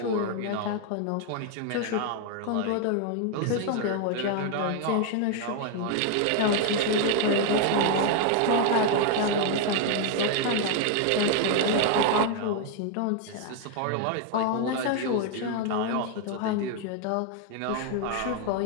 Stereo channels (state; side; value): different; both; correlation 0.00